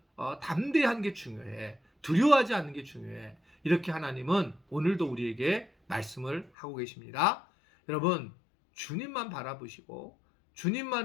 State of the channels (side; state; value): right; drops out; at 6.5 s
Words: 담대한 게 중요해. 두려워하지 않는 게 중요해. 이렇게 하나님은 오늘도 우리에게 말씀을 하고 계십니다. 여러분, 주님만 바라보시고